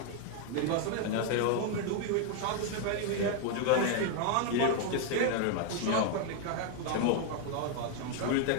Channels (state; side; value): different; both; correlation 0.00